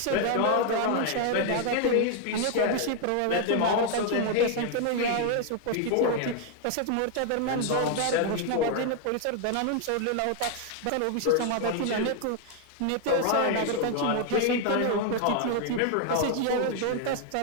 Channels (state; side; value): different; both; correlation 0.00